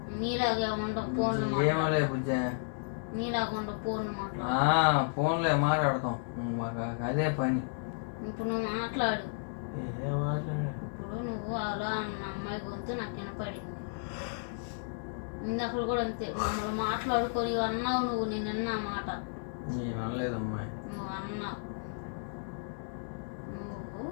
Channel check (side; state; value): right; silent; digital silence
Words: నీలాగే ఉండవు ఫోన్లు. ఏమోలే బుజ్జా. నీలాగా ఉండవు ఫోన్లు మాట్లాడు. ఫోన్లే మాట్లాడతాం మాకు అదే పని. ఇప్పుడు నువ్వు మాట్లాడు. మాట్లాడు. ఇప్పుడు నువ్వు అలా అన్న అమ్మాయి గొంతు నాకు వినపడింది. ఇందాక కూడా అంతే మమ్మల్ని మాట్లాడుకొని అన్నావు నువ్వు. నేను అన్నా మాట. నేను అనలేదమ్మాయి. నువ్వు అన్నావు. నువ్వు